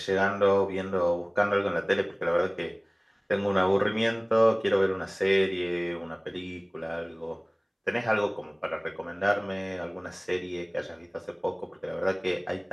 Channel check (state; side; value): identical; both; correlation 1.00